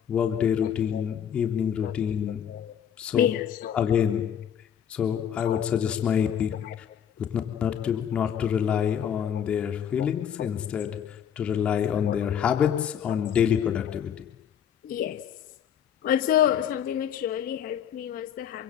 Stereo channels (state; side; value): quieter; right; 8.7 dB